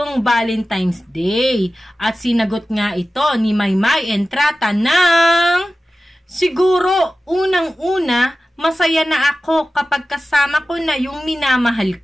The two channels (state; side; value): normal; both; correlation 0.95